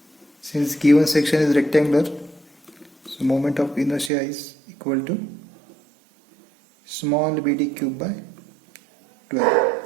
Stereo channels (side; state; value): left; drops out; at 4.1 s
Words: Since given section is rectangular, so moment of inertia is equal to small bd cube by 12.